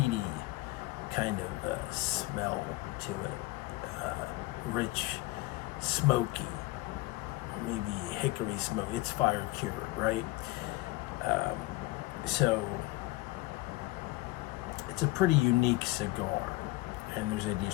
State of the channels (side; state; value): right; quieter; 19.7 dB